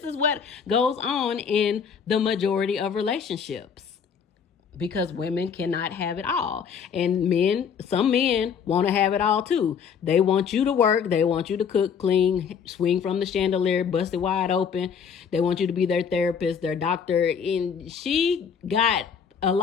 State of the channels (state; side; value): quieter; right; 6.9 dB